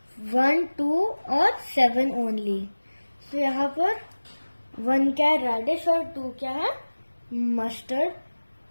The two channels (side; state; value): both; inverted; correlation -1.00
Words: 1, 2 और 7 ओनली। सो यहाँ पर 1 क्या है रेडिश और 2 क्या है मस्टर्ड